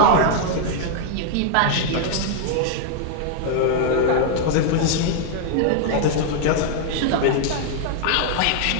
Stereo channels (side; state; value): both; different; correlation -0.01